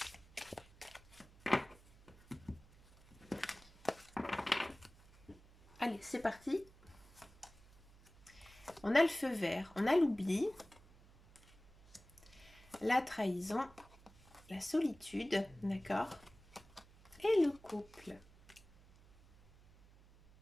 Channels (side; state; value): right; noise; hum, 24 dB below the sound